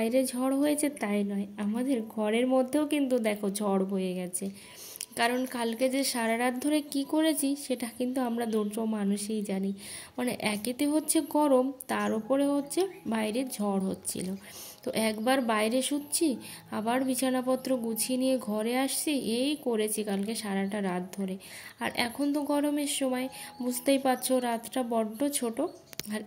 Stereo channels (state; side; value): identical; both; correlation 1.00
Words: ঝড় হয়েছে তাই নয়, আমাদের ঘরের মধ্যেও কিন্তু দেখো ঝড় বয়ে গেছে। কারণ কালকে যে সারা রাত ধরে কি করেছি সেটা কিন্তু আমরা দুটো মানুষই জানি। মানে একেতে হচ্ছে গরম, তার উপরে হচ্ছে বাইরে ঝড় হচ্ছিল। তো একবার বাইরে শুচ্ছি, আবার বিছানাপত্র গুছিয়ে নিয়ে ঘরে আসছি, এই করেছি কালকে সারাটা রাত ধরে। আর এখন তো গরমের সময়, বুঝতেই পারছো রাতটা বড্ড ছোট। আর